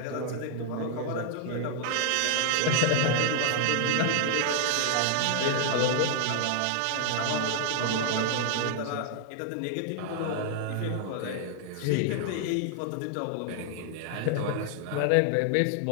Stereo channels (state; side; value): different; both; correlation 0.00